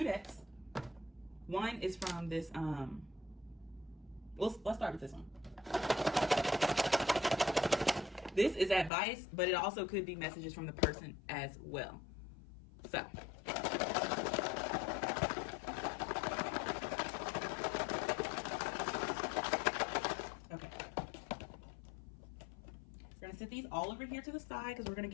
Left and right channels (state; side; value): drops out; right; at 8.9 s